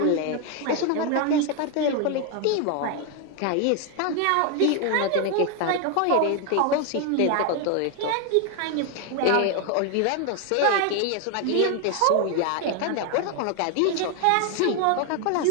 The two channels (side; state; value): both; different; correlation 0.01